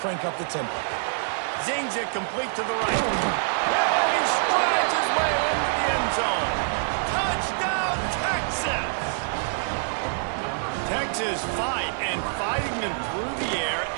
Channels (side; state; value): left; silent; 61 dB below the other